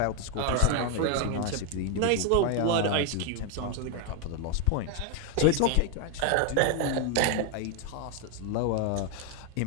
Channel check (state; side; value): different; both; correlation 0.01